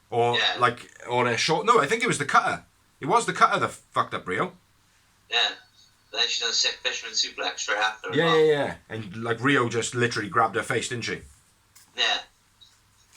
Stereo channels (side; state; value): both; identical; correlation 1.00